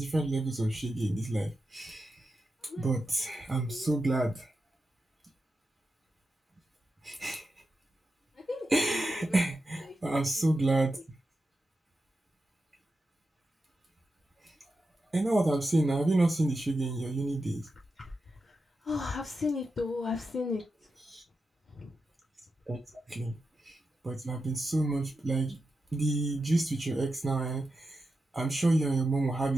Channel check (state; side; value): normal; both; correlation 0.89